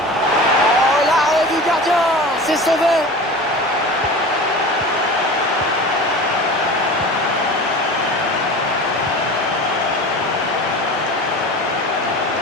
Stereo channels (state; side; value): normal; both; correlation 0.34